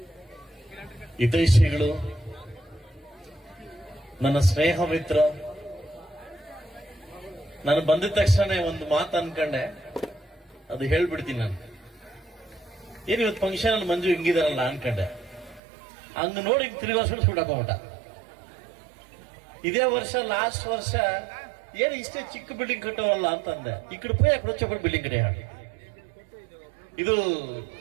ಹಿತೈಷಿಗಳು, ನನ್ನ ಸ್ನೇಹ ಮಿತ್ರ. ನಾನು ಬಂದಿದ ತಕ್ಷಣ ಒಂದು ಮಾತು ಅನ್ಕೊಂಡೆ, ಅದು ಹೇಳ್ಬಿಡ್ತೀನಿ. ನಾನು ಏನು ಇವತ್ತು ಫಂಕ್ಷನ್ ಅಲ್ಲಿ ಮಂಜು ಹಿಂಗಿದಾರಲ್ಲ ಅನ್ಕೊಂಡೆ. ಹಂಗ ನೋಡಿ ತಿರುಗಿ ವರ್ಷ ಸುಡಾಕೊಂಬಿಟ್ಟ. ಇದೇ ವರ್ಷ ಲಾಸ್ಟ್ ವರ್ಷ ಏನು ಇಷ್ಟೇ ಚಿಕ್ಕ ಬಿಲ್ಡಿಂಗ್ ಕಟ್ಟೋರಲ್ಲ ಅಂತಂದೆ. ಈ ಕಡೆ ಪೋಯ್ ಯಾಕೆ ಬಿಲ್ಡಿಂಗ್ ಕಡೆ ಹಾಡು. ಇದು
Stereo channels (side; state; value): left; drops out; at 15.6 s